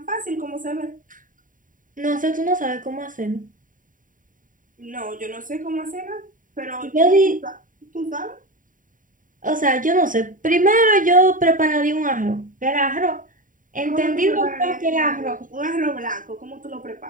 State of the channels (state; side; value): late; left; 0.39 ms